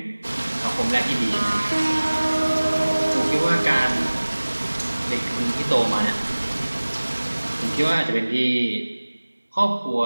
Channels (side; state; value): both; inverted; correlation -1.00